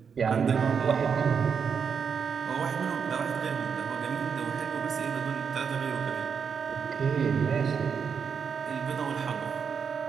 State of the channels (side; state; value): left; quieter; 6.4 dB